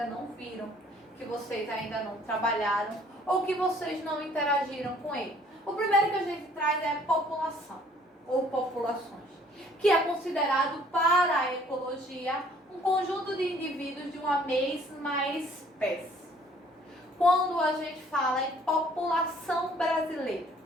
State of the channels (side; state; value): both; normal; correlation 0.58